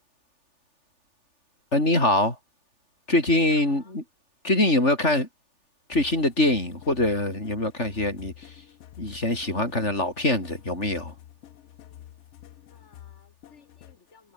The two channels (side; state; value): right; late; 3.4 ms